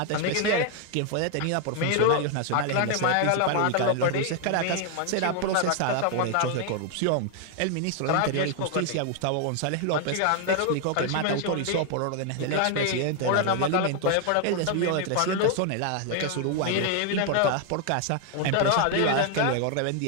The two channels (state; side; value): different; both; correlation 0.00